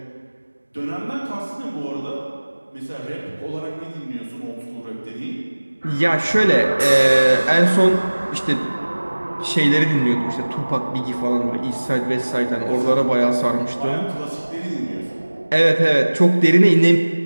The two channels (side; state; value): both; inverted; correlation -1.00